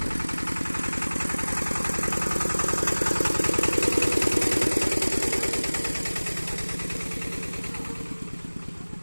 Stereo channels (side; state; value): both; inverted; correlation -1.00